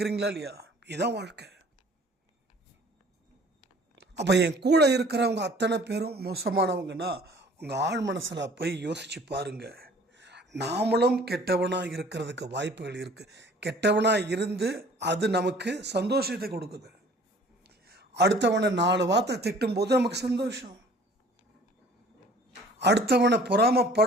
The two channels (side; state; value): both; normal; correlation 0.51